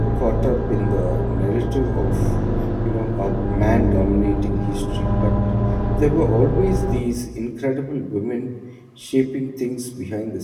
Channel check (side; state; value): both; identical; correlation 1.00